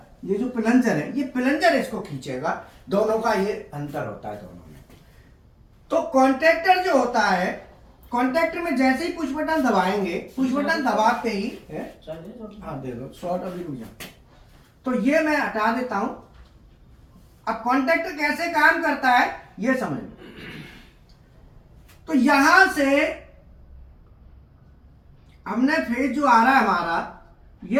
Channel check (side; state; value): both; identical; correlation 1.00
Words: ये जो प्लंजर है, ये प्लंजर इसको खींचेगा। दोनों का ये अंतर होता है दोनों में। तो कॉन्टैक्टर जो होता है, कॉन्टैक्टर में जैसे ही पुश बटन दबाएंगे, पुश बटन दबाते ही हाँ दे दो, शॉर्ट अभी रुक जाओ। तो ये मैं हटा देता हूं। अब कॉन्टैक्टर कैसे काम करता है ये समझ लो। तो यहां से हमने फेज जो आ रहा है हमारा,